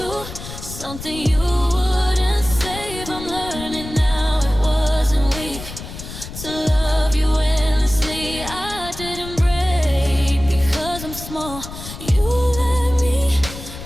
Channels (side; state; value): left; noise; rumble, 11 dB below the sound